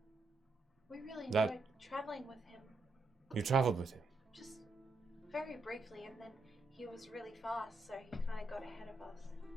We really enjoyed traveling with him, you traveled with him. just very briefly, and then he was really fast, so he kind of got ahead of us.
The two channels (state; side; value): quieter; left; 3.2 dB